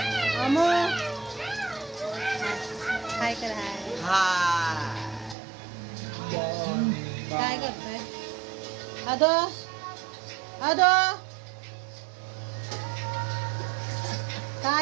अमो काय कर काय करतोय अदो अदो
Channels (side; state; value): left; drops out; at 5.4 s